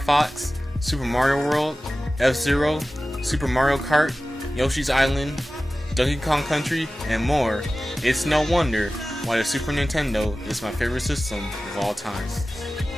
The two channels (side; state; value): both; normal; correlation 0.96